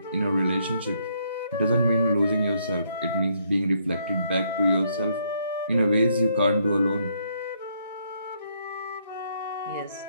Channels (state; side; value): inverted; both; correlation -0.71